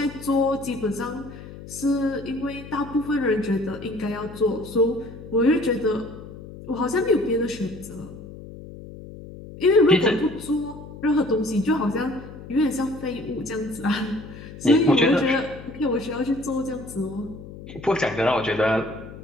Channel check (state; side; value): noise; left; hum, 14 dB below the sound